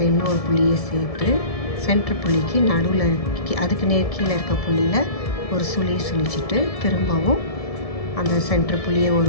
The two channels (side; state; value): right; late; 1.7 ms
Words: இன்னொரு புள்ளியை சேர்த்து சென்டர் புள்ளிக்கு நடுவில் அதுக்கு கீழே இருக்க புள்ளியில் ஒரு சுழிச்சிட்டு திரும்பவும் அந்த சென்டர் புள்ளியை ஒரு